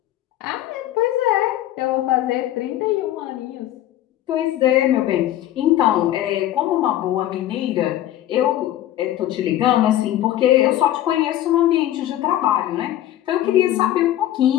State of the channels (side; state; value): right; quieter; 13.1 dB